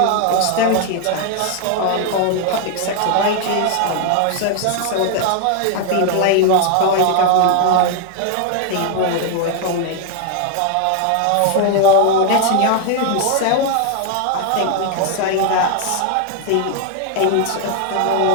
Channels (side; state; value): both; different; correlation 0.00